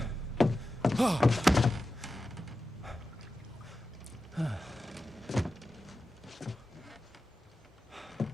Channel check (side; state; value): both; normal; correlation 0.93